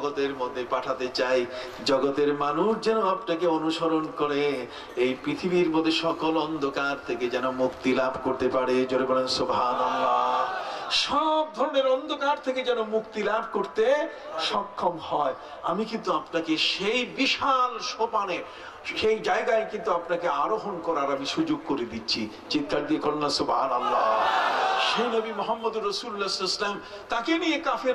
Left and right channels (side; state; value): both; identical; correlation 1.00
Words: মধ্যে পাঠাতে চাই। জগতের মানুষ যেন আপনাকে অনুসরণ করে এই পৃথিবীর মধ্যে সকল অন্ধকার থেকে যেন মুক্তি লাভ করতে পারে। জোরে বলেন সুবহানাল্লাহ। সব ধরনের অন্ধকার থেকে যেন মুক্তি লাভ করতে সক্ষম হয়। আমি কিন্তু আপনাকে সেই বিশাল সোপানে, সেই জায়গায় কিন্তু আপনাকে আরোহণ করার আমি সুযোগ করে দিচ্ছি। চিৎকার দিয়ে করুন না সুবহানাল্লাহ। সেই নবী মুহাম্মদুর রাসূলুল্লাহ সাল্লাল্লাহু আলাইহি ওয়াসাল্লাম, তাকে নিয়ে